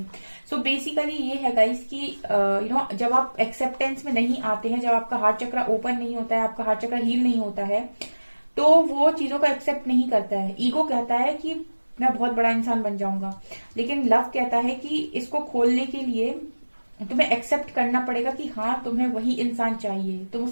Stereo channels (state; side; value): inverted; both; correlation -1.00